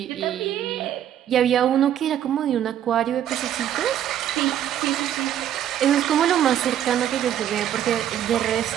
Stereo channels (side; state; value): left; quieter; 10.7 dB